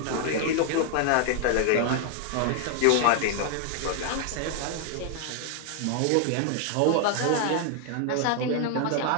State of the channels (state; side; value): different; both; correlation 0.00